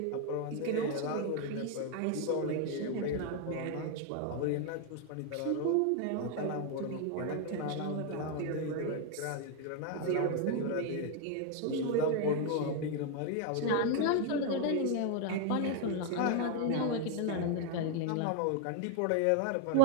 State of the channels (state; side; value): different; both; correlation 0.01